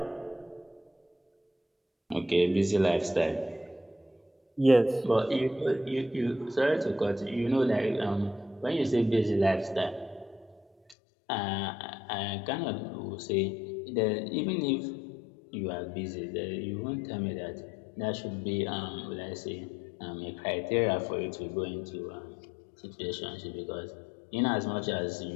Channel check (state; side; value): drops out; right; at 11.0 s